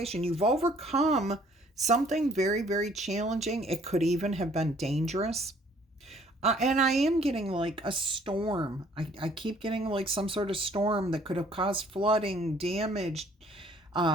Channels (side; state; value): both; normal; correlation 0.59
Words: You've overcome something very, very challenging. It could even have been dangerous. And I am getting like a storm. I keep getting like some sort of storm that could have caused flooding, damage,